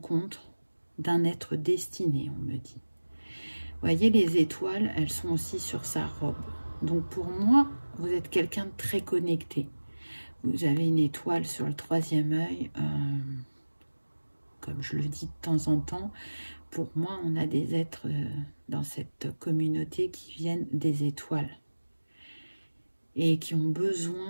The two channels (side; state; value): both; inverted; correlation -1.00